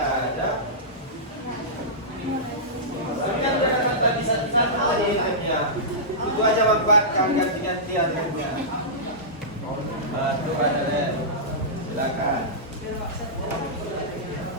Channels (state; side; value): normal; both; correlation -0.16